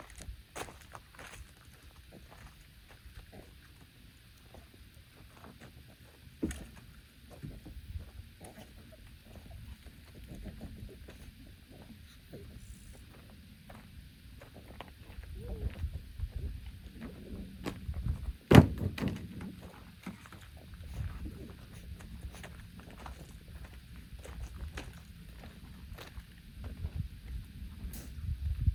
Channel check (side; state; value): both; identical; correlation 1.00